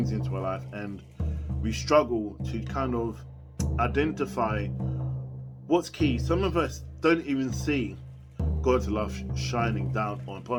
into our life, and we struggle to kind of identify what's key. Some of us don't even see God's love shining down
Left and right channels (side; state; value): both; identical; correlation 1.00